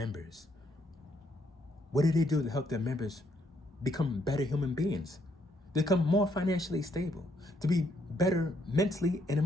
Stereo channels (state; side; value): normal; both; correlation 0.72